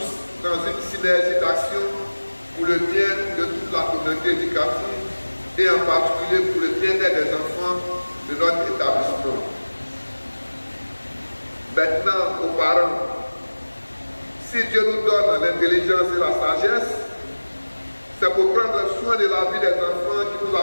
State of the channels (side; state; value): both; inverted; correlation -1.00